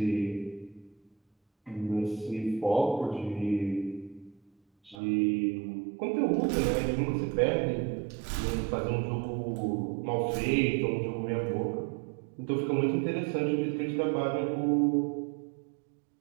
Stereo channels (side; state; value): left; drops out; at 5.0 s